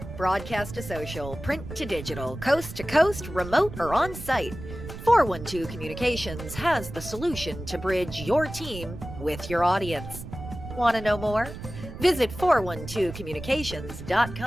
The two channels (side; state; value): right; noise; rumble, 11 dB below the sound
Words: Broadcast to social, print to digital, coast to coast, remote or on site, 412 Communications has the solution to bridge your team with your audience. Want to know more? Visit